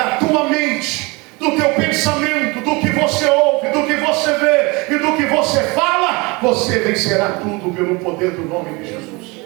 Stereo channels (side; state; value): left; quieter; 26.3 dB